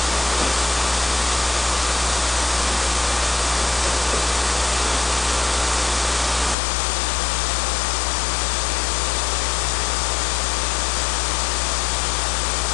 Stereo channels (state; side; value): drops out; right; at 6.6 s